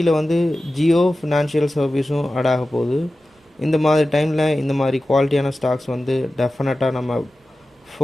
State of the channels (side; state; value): both; normal; correlation 0.95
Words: வந்து ஜியோ ஃபினான்ஷியல் சர்வீஸும் ஆட் ஆக போகுது. இந்த மாதிரி டைமில் இந்த மாதிரி குவாலிட்டியான ஸ்டாக்ஸ் வந்து டெஃபினட்டாக நம்ம